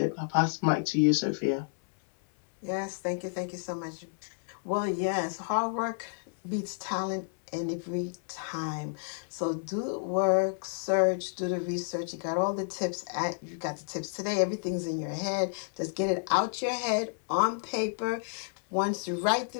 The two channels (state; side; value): silent; right; 57 dB below the other